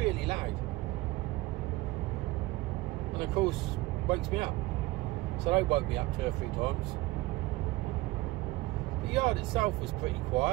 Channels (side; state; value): left; quieter; 19.8 dB